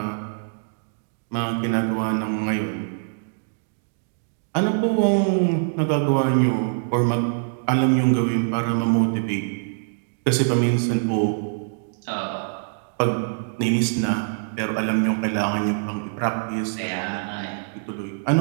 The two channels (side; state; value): left; silent; digital silence